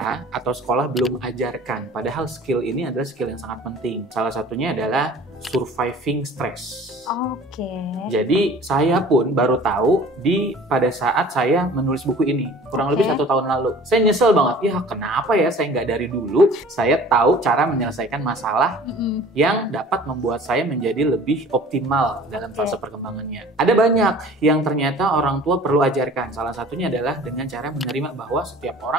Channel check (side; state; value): both; normal; correlation 0.46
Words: atau sekolah belum ajarkan. Padahal skill ini adalah skill yang sangat penting. Salah satunya adalah surviving stress. Oke. Jadi saya pun baru tahu pada saat saya menulis buku ini, kurang lebih 1 tahun lalu. Saya nyesel banget, ya kenapa ya saya nggak dari dulu saya tahu cara menyelesaikan masalah yang dapat membuat saya menjadi lebih optimal dalam fase perkembangannya. Ada banyak yang ternyata orang tua perlu ajarkan. Salah satunya adalah dengan cara menerima bahwa setiap